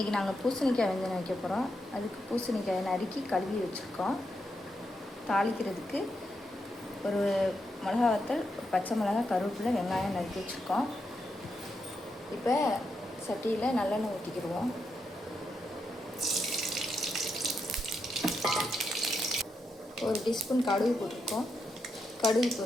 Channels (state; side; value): normal; both; correlation 0.83